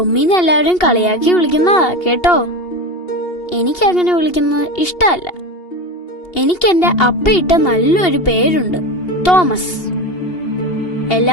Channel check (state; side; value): late; right; 2.8 ms